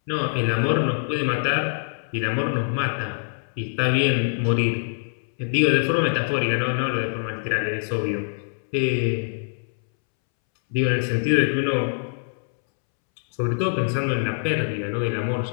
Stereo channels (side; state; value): right; silent; 63 dB below the other